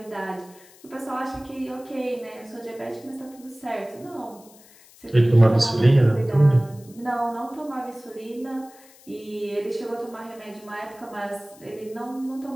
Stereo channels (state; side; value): noise; left; hiss, 24 dB below the sound